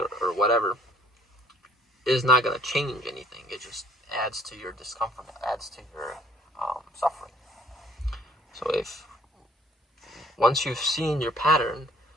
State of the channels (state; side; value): normal; both; correlation 0.58